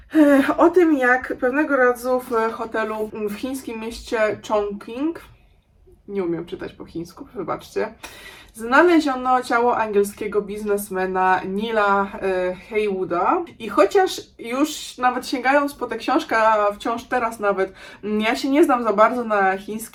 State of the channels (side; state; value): both; identical; correlation 1.00